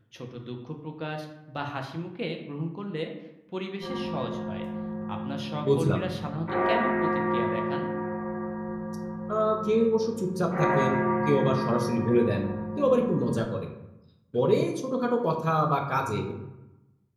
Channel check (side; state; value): both; identical; correlation 1.00